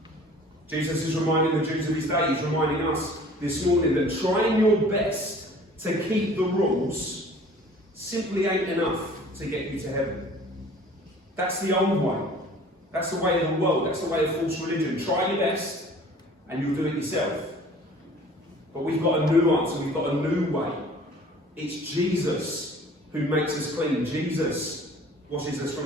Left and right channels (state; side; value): normal; both; correlation 0.49